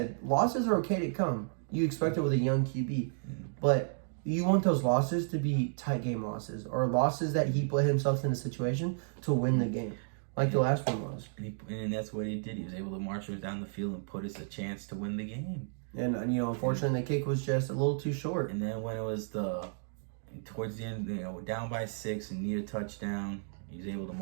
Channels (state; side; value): silent; left; digital silence